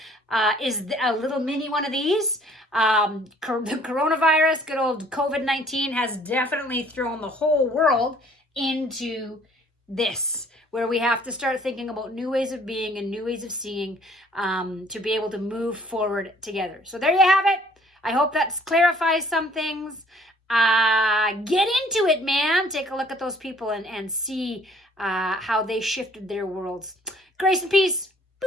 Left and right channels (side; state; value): both; normal; correlation 0.58